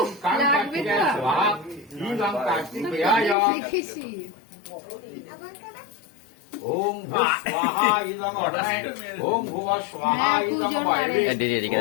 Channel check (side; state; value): right; drops out; at 3.4 s